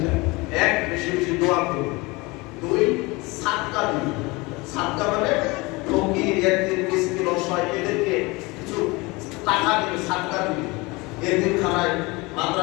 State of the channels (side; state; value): right; quieter; 24.3 dB